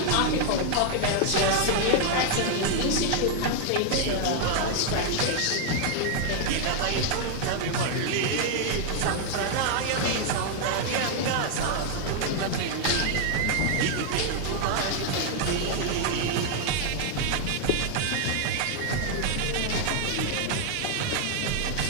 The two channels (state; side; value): different; both; correlation 0.00